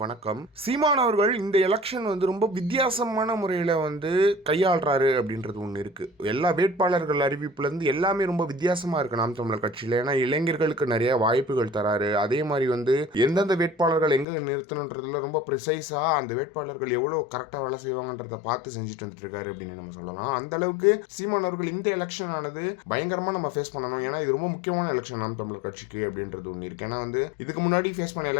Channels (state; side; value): drops out; right; at 14.2 s